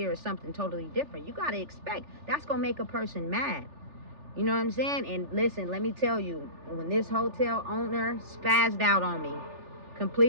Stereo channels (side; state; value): left; late; 3.4 ms